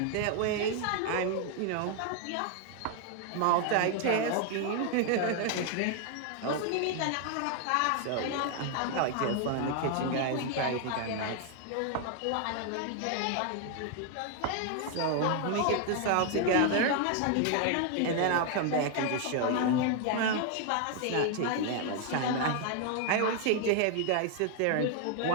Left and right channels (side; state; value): both; different; correlation 0.00